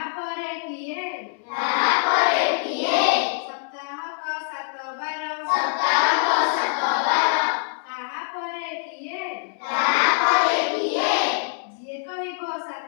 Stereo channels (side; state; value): right; silent; 63 dB below the other